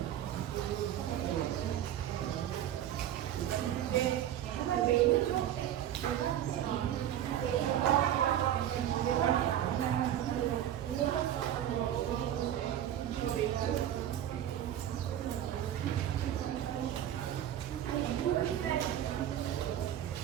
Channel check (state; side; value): quieter; left; 11.2 dB